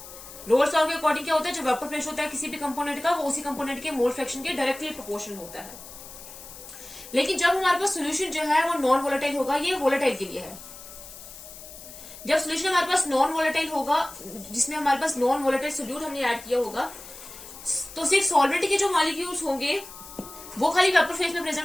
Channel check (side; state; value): left; noise; hiss, 15 dB below the sound